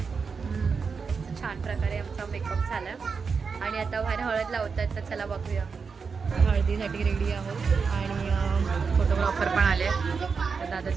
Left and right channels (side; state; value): left; quieter; 5.4 dB